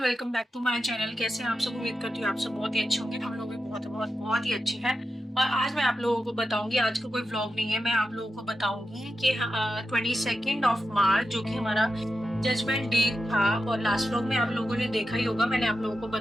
welcome back to my channel. कैसे हैं आप सब? उम्मीद करती हूँ आप सब बहुत ही अच्छे होंगे। हम लोग भी बहुत ही अच्छे हैं। और आज मैं आप लोगों को बताऊंगी, आज का कोई व्लॉग नहीं है, मैं आप लोगों को बताऊंगी कि 22 मार्च जो कि हमारा जजमेंट डे था। और लास्ट व्लॉग में आप लोगों ने देखा ही होगा, मैंने आप लोगों को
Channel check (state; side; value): normal; both; correlation 0.90